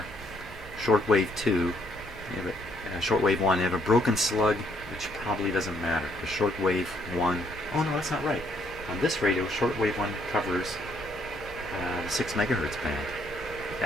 Shortwave 2. Shortwave 1. They have a broken slug, which probably doesn't matter. The shortwave 1. Oh no, that's not right. On this radio, shortwave 1 covers the 6 megahertz band.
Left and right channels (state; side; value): normal; both; correlation 0.69